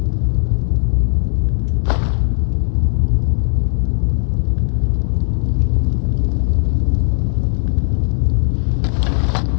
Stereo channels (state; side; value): silent; right; 68 dB below the other